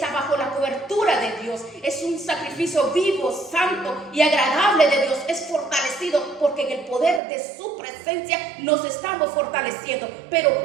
bajo la cobertura de Dios. Es un sacrificio vivo, santo y agradable de Dios. Es fortalecido porque en el poder de su presencia nos estamos fortaleciendo. Pero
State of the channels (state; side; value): drops out; left; at 7.2 s